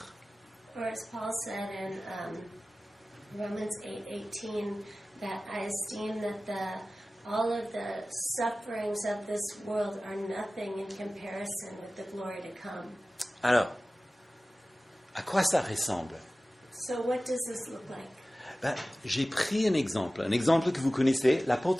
Or as Paul said in Romans 8:18, that I esteem that all of the sufferings of this world are nothing in comparison with the glory to come. Alors, à quoi ça ressemble? So what does this look like? Ben, j'ai pris un exemple que vous connaissez,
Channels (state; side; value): normal; both; correlation 0.97